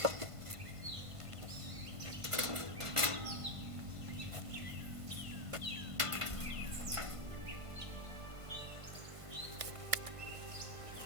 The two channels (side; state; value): left; late; 1.5 ms